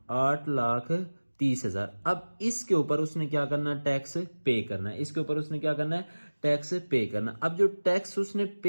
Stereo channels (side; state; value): both; inverted; correlation -1.00